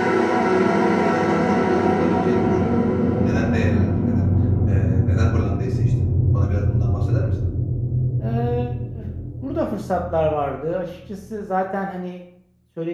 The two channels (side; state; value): both; identical; correlation 1.00